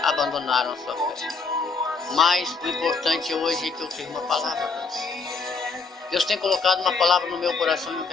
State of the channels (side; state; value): right; quieter; 4.5 dB